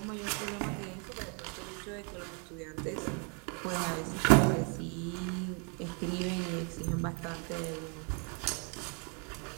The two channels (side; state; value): left; quieter; 36.5 dB